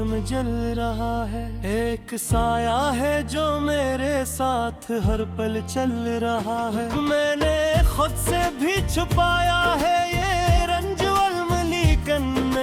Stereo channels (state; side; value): identical; both; correlation 1.00